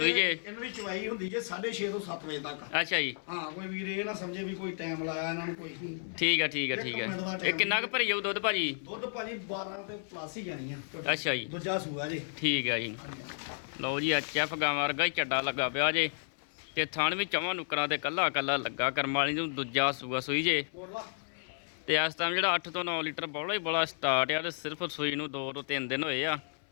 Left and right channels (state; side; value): silent; right; 56 dB below the other